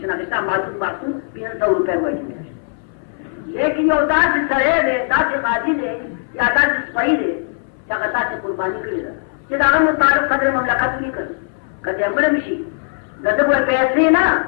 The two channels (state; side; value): silent; right; 62 dB below the other